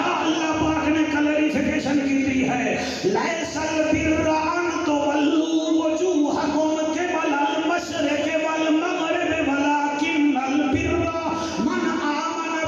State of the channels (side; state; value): both; identical; correlation 1.00